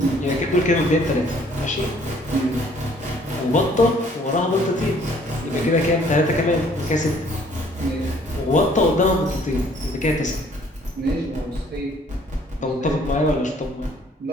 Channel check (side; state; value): both; normal; correlation 0.59